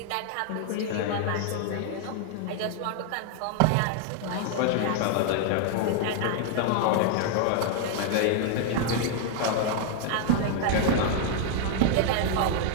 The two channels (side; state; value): both; different; correlation 0.00